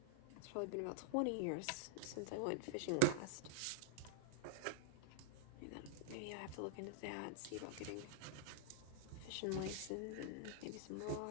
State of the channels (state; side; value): different; both; correlation -0.01